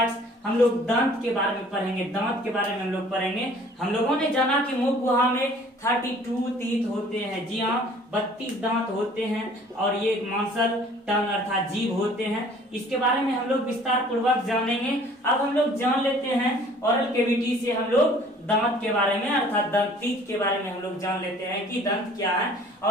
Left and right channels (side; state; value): both; normal; correlation 0.53